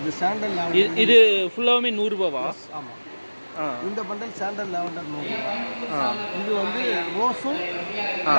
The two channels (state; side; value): inverted; both; correlation -1.00